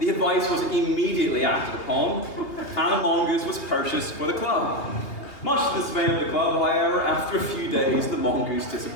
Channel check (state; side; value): late; right; 3.0 ms